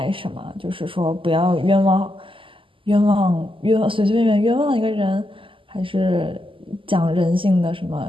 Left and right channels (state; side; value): late; left; 0.25 ms